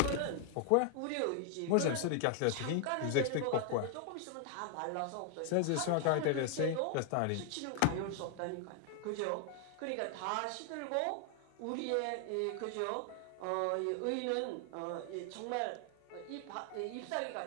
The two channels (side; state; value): both; different; correlation 0.00